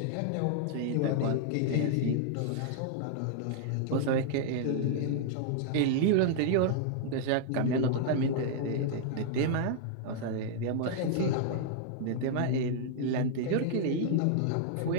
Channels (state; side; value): different; both; correlation -0.01